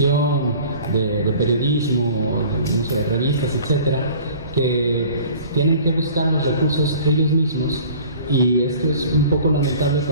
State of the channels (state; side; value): inverted; both; correlation -0.46